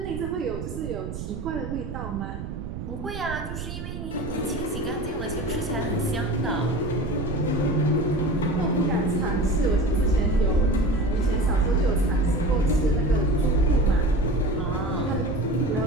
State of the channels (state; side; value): noise; right; rumble, 7 dB below the sound